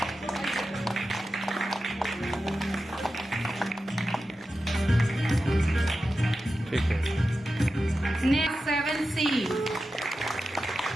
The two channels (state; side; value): normal; both; correlation 0.92